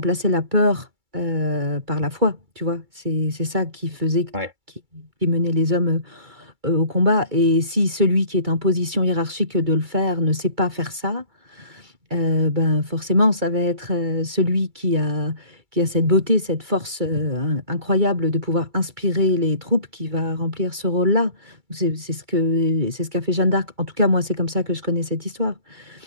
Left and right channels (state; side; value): late; left; 2.3 ms